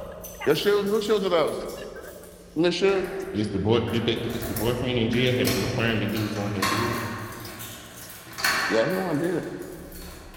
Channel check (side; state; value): both; identical; correlation 1.00